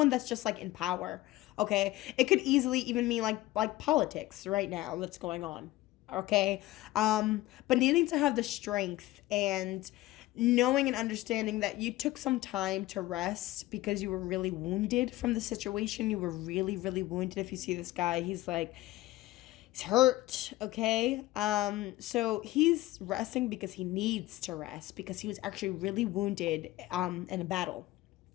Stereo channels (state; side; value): quieter; right; 17.2 dB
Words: that's just like in power, okay? It could easily even mean like politics right now that's going on, okay? But needing to have the strength and knowing and understanding that you took some time to rest because you were really wounded from the situation. You were really, really wounded. If you see this guy, he's He's hurt, okay? So he's resting because he needs to rest, because he was actually really wounded in a battle,